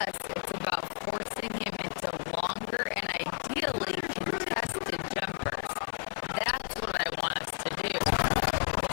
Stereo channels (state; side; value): silent; right; 56 dB below the other